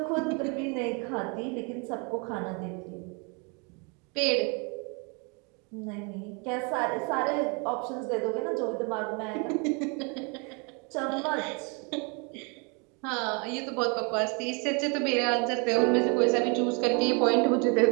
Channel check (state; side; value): quieter; left; 33.2 dB